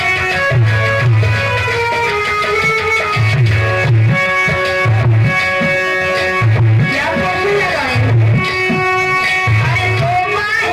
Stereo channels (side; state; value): both; identical; correlation 1.00